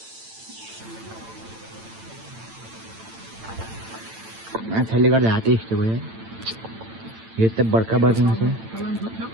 माछाले गर्दा हातै यस्तो भयो यो त बर्खा बर्खा माछा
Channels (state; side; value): late; left; 8.9 ms